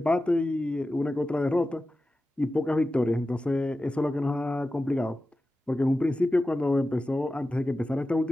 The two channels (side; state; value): both; normal; correlation 0.94